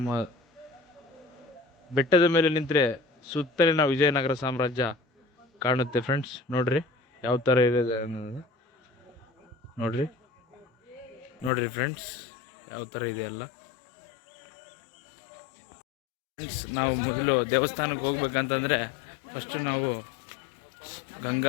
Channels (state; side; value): drops out; right; at 11.5 s